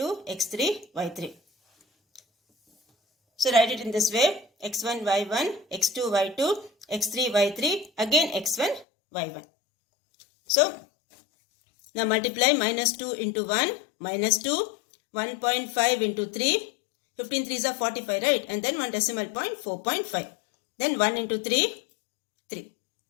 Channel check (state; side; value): drops out; right; at 8.8 s